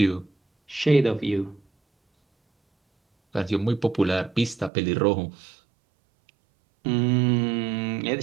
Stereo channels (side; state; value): left; drops out; at 4.7 s